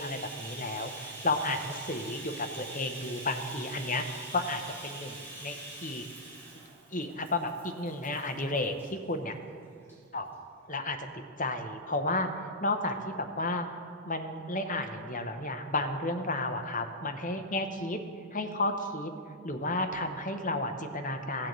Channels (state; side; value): normal; both; correlation -0.09